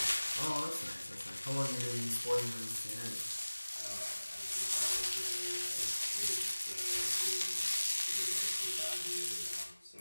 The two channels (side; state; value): both; inverted; correlation -1.00